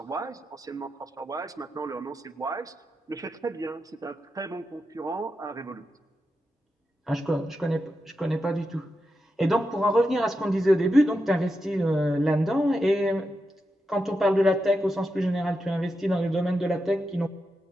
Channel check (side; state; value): both; normal; correlation 0.88